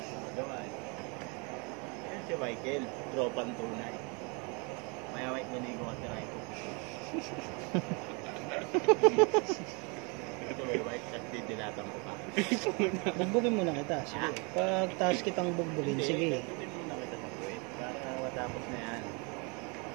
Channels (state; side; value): quieter; left; 31.6 dB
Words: Magawa eh. Yan si Michael. Tropang tunay. Maya Mike nanigo ka si Raiko. Ito may Mike. Kasi dinatang mo pa. Bugbugin muna kita. Sige. Pag taas kitang bugbugin, sige. Hindi mo na kita tapuin. Para matapos na yan.